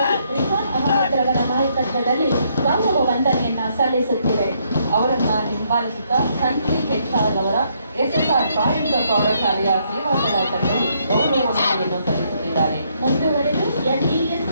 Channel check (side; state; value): both; inverted; correlation -0.72